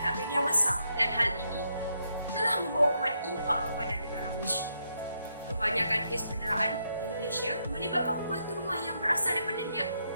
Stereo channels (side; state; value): both; inverted; correlation -0.79